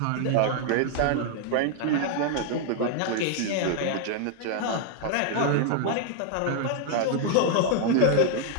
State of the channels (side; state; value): both; different; correlation 0.00